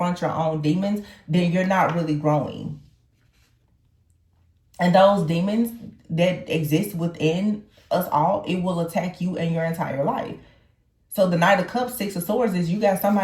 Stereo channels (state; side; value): identical; both; correlation 1.00